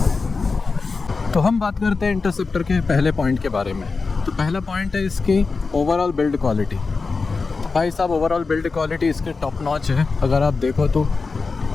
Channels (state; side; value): quieter; right; 4.3 dB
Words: तो हम बात करते हैं इंटरसेप्टर के पहले पॉइंट के बारे में। तो पहला पॉइंट है इसकी ओवरऑल बिल्ड क्वालिटी। भाई साहब, ओवरऑल बिल्ड क्वालिटी इसकी टॉप नॉच है। अगर आप देखो तो